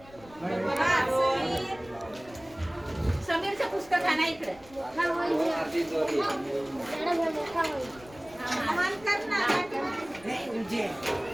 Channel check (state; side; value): noise; left; rumble, 23 dB below the sound